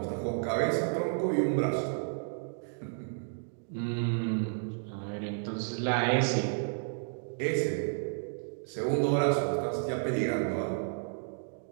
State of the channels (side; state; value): left; silent; digital silence